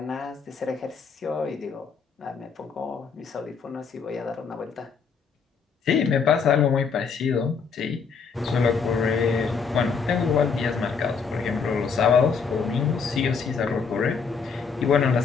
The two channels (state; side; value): quieter; right; 5.6 dB